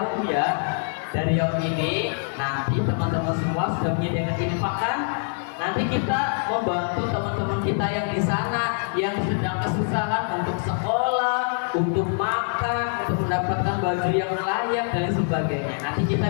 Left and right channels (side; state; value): right; silent; 58 dB below the other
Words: ya. Dari Yaum ini nanti teman-teman semua sudah menyediakan ini makan. Nanti kita membantu teman-teman kita yang di sana yang sedang kesusahan untuk sekolah, untuk makan, untuk mendapatkan baju yang layak dan sebagainya. Nanti